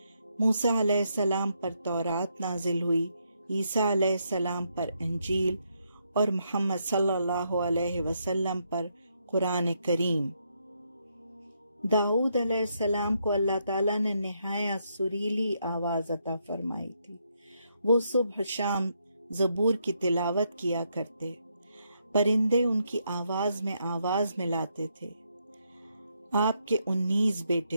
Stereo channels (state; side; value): inverted; both; correlation -0.77